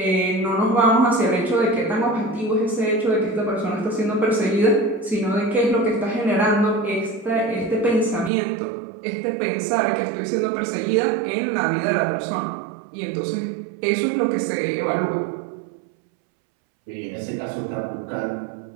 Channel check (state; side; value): drops out; left; at 8.3 s